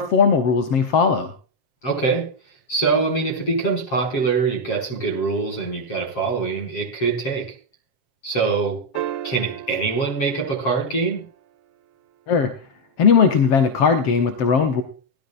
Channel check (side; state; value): right; late; 7.5 ms